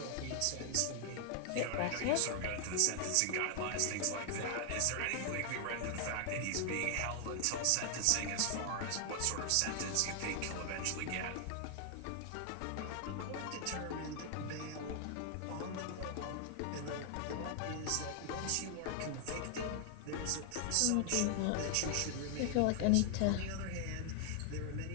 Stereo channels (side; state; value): both; different; correlation 0.00